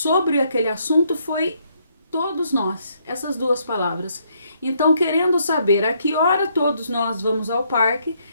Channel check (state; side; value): inverted; both; correlation -0.71